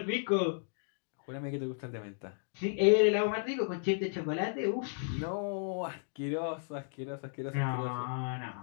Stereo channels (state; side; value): silent; right; digital silence